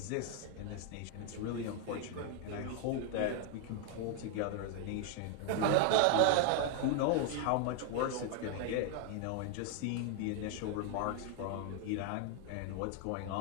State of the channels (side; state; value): both; different; correlation 0.01